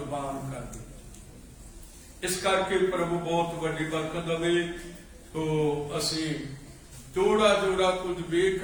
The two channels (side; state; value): both; identical; correlation 1.00